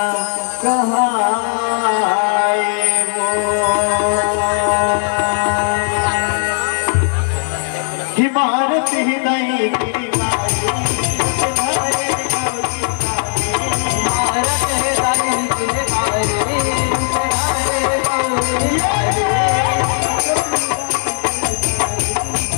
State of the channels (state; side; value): silent; right; digital silence